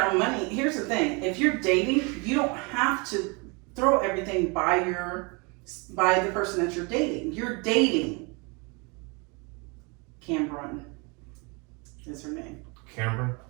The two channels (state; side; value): quieter; left; 30.2 dB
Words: own money, here's the thing: if you're dating, you don't have to throw everything by the person that you're dating. You're dating. Cameron is her name. Cameron?